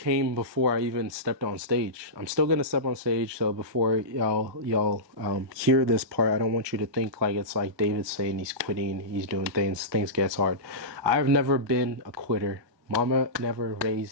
before I even stepped on stage. I'm still gonna step on stage, so before y'all hear this part, I don't want you to think like it's like David's saying he's quitting, he's doing things gets hard. I've never been a quitter. Mama never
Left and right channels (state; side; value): late; left; 1.2 ms